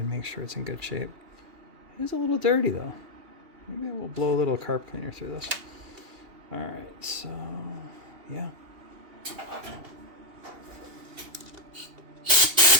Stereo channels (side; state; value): left; late; 2.8 ms